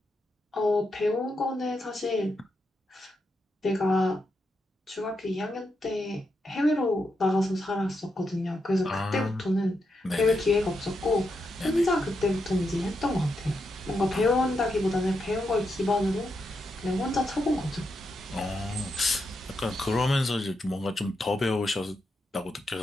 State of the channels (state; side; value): normal; both; correlation 0.83